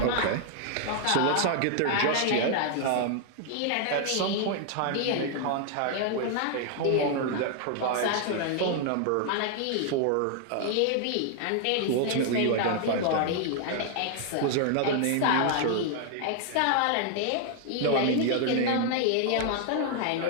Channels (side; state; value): both; different; correlation 0.00